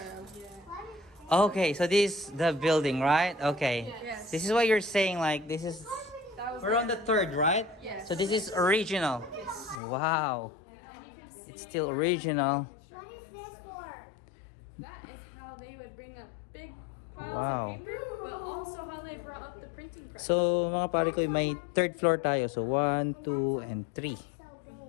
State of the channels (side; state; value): right; drops out; at 9.8 s